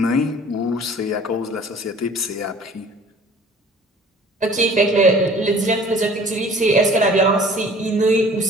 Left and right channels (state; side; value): normal; both; correlation 0.50